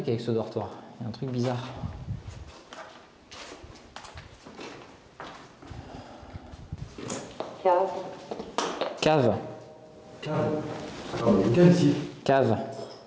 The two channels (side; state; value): both; identical; correlation 1.00